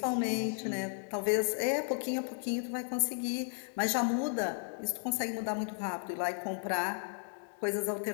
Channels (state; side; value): silent; right; 55 dB below the other